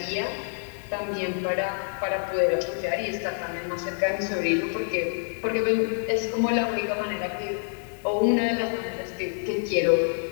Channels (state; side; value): silent; right; digital silence